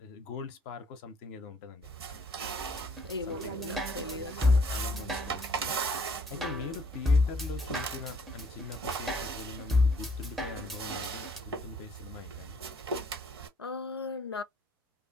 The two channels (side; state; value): both; normal; correlation 0.62